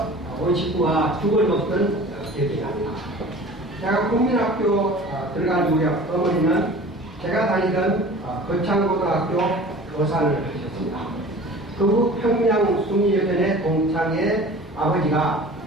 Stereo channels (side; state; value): both; normal; correlation 0.42